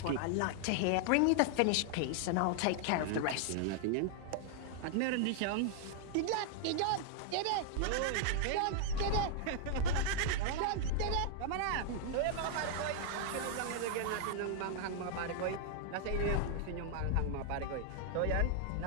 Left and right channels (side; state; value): both; different; correlation 0.00